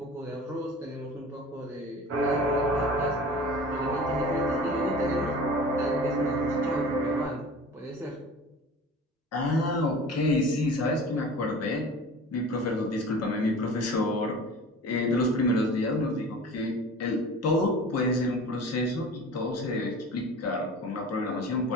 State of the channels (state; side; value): normal; both; correlation 0.39